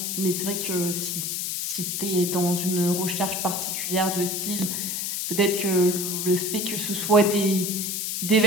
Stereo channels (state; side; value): noise; left; hiss, 2 dB below the sound